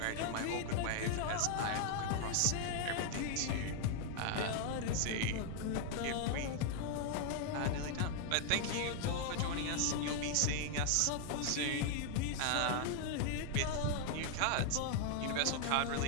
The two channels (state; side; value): different; both; correlation 0.00